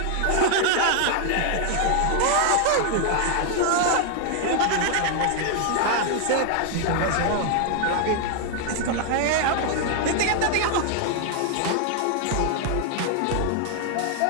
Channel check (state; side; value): different; both; correlation 0.00